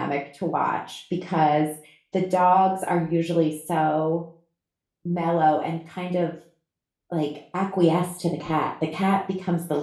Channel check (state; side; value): identical; both; correlation 1.00